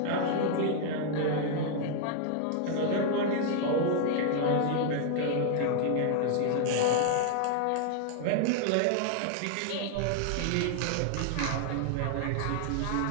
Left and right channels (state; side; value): different; both; correlation 0.00